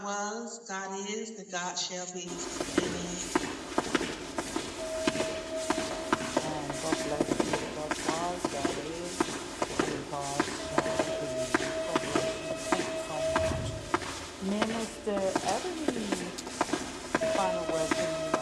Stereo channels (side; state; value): both; identical; correlation 1.00